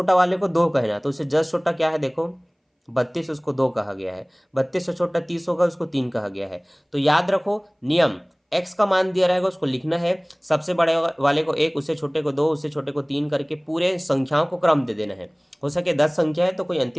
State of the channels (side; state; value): both; identical; correlation 1.00